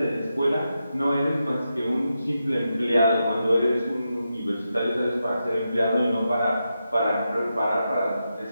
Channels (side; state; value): both; inverted; correlation -0.87